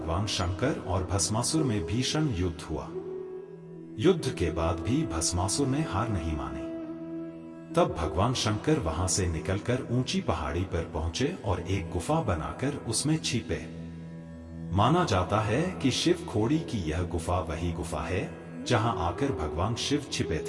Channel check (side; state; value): both; identical; correlation 1.00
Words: शंकर और भस्मासुर में भीषण युद्ध हुआ। युद्ध के बाद भी भस्मासुर ने हार नहीं मानी। तब भगवान शंकर वहां से निकलकर ऊंची पहाड़ी पर पहुंचे और एक गुफा बनाकर उसमें छिपे। माना जाता है कि शिव खोड़ी की यह गुफा वही गुफा है जहां आकर भगवान शिव छिपे